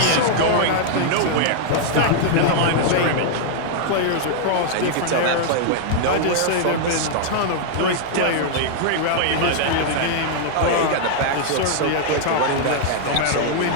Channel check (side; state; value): both; different; correlation -0.01